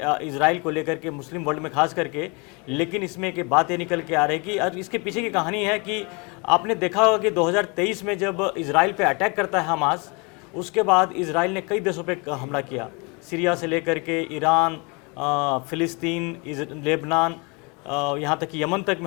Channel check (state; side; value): quieter; right; 30.3 dB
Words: इजराइल को लेकर के, मुस्लिम वर्ल्ड में खास करके, लेकिन इसमें एक बात ये निकल के आ रही है कि और इसके पीछे की कहानी है कि आपने देखा होगा कि 2023 में जब इजराइल पे अटैक करता है हमास, उसके बाद इजराइल ने कई देशों पे हमला किया, सीरिया से लेकर के ईरान, फ़िलिस्तीन, लेबनान, यहाँ तक कि यमन तक